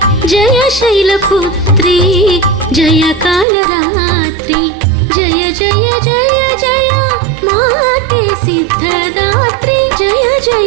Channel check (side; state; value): left; drops out; at 3.5 s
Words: जय शैलपुत्री जय कालरात्रि जय जय जय जय माते सिद्धदात्री जय